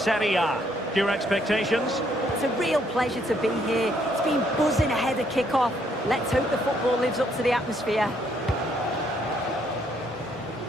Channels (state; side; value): normal; both; correlation 0.70